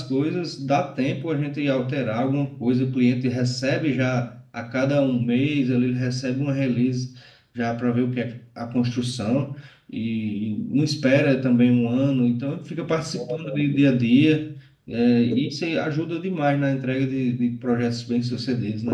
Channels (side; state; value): both; identical; correlation 1.00